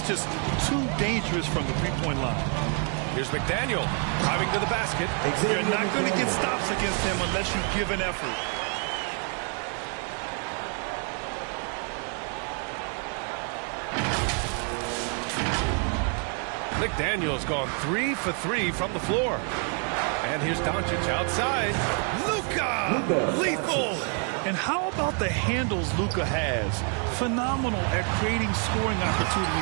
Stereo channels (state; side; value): quieter; left; 39.4 dB